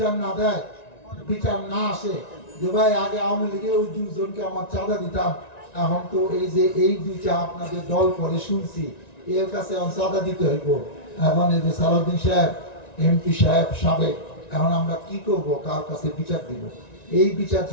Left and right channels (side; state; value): right; late; 1.9 ms